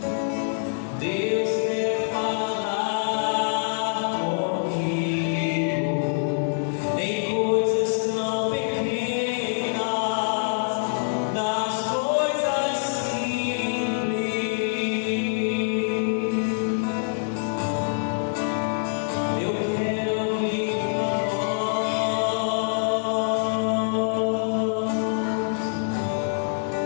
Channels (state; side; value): silent; right; digital silence